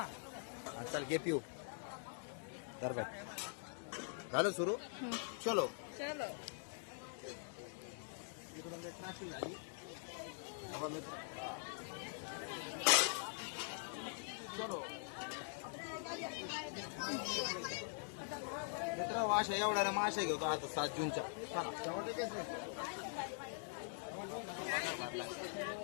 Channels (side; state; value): right; silent; digital silence